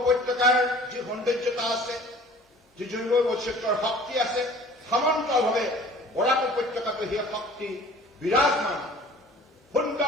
যি সৌন্দৰ্যতা আছে, যি জৈৱ বৈচিত্ৰ্যৰ শক্তি আছে, সমান্তৰালভাৱে বৰাক উপত্যকাটো সেই শক্তি বিৰাজমান।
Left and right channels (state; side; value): normal; both; correlation 0.48